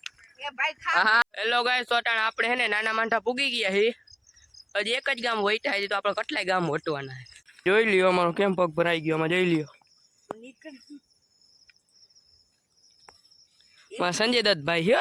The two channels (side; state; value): both; identical; correlation 1.00